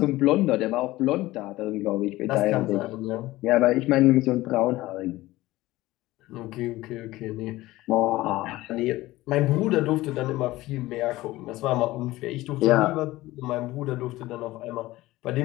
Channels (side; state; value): right; quieter; 17.8 dB